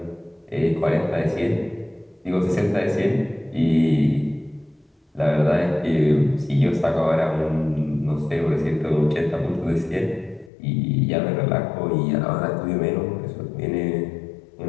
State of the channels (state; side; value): drops out; right; at 10.5 s